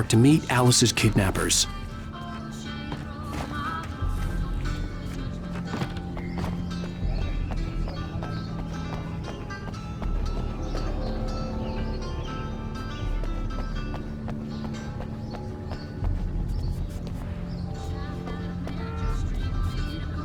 to meet Alice's kidnappers.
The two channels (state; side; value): identical; both; correlation 1.00